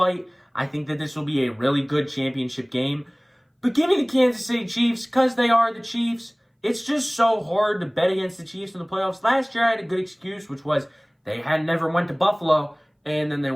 I think that this will be a really good championship game. But give me the Kansas City Chiefs because they are the Chiefs. It's just so hard to bet against the Chiefs in the playoffs. Last year, I had a good excuse, which was they had never went to Buffalo, and then they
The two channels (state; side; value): identical; both; correlation 1.00